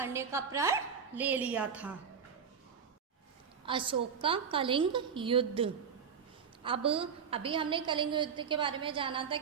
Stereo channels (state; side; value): quieter; left; 6.7 dB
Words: का प्रण ले लिया था। अशोक का कलिंग युद्ध। अब अभी हमने कलिंग युद्ध के बारे में जाना था